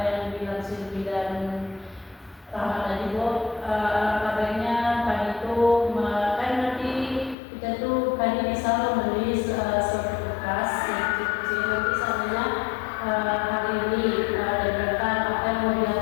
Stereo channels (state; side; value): drops out; right; at 7.4 s